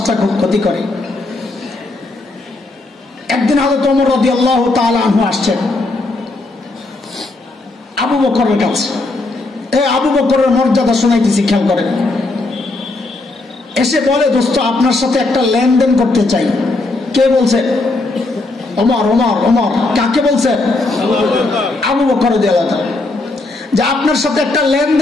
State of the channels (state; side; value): quieter; right; 3.1 dB